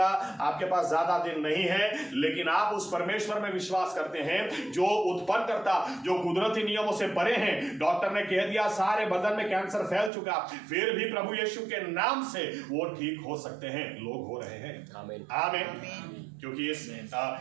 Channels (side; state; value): left; drops out; at 10.1 s